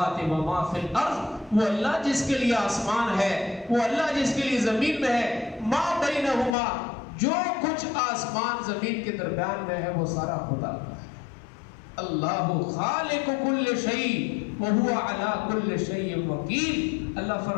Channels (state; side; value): drops out; right; at 6.6 s